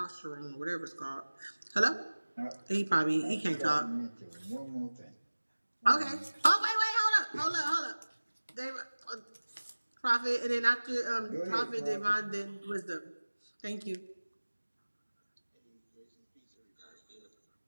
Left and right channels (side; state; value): both; inverted; correlation -1.00